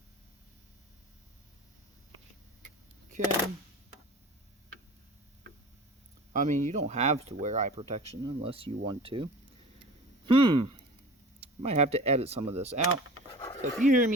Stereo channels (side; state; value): both; normal; correlation 0.39